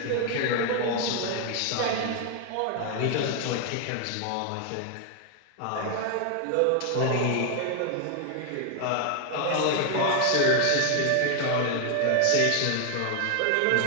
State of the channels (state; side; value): different; both; correlation 0.00